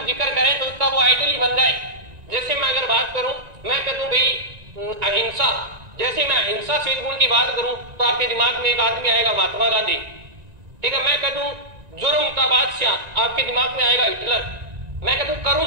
जिक्र करें तो उसका वो आइडल ही बन जाए। जैसे मैं अगर बात करूं, मैं कह दूं भाई अहिंसा, जैसे मैं अहिंसा शील गुण की बात करूं तो आपके दिमाग में एक आदमी आएगा महात्मा गांधी, ठीक है। मैं कह दूं जुर्म का बादशाह, आपके दिमाग में आएगा हिटलर। मैं कह दूं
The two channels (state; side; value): late; left; 1.9 ms